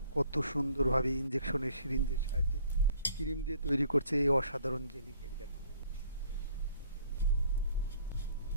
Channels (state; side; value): inverted; both; correlation -0.59